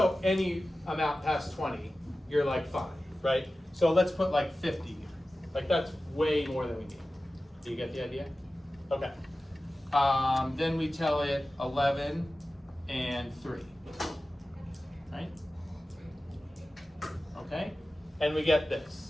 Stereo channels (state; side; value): normal; both; correlation 0.95